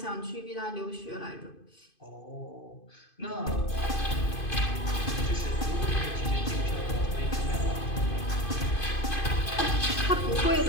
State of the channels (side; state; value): right; late; 2.5 ms